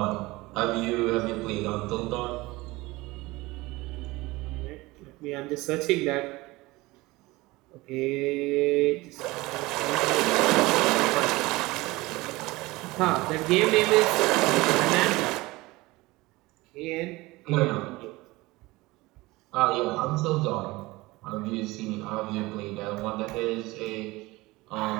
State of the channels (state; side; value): quieter; left; 20.9 dB